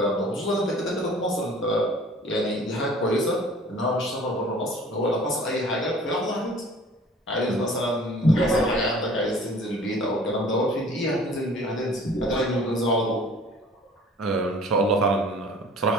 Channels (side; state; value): both; normal; correlation 0.49